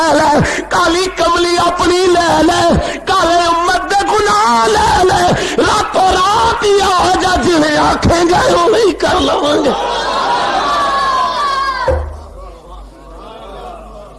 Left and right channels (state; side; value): identical; both; correlation 1.00